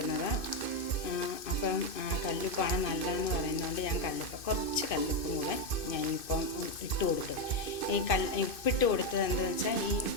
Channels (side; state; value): right; late; 2.5 ms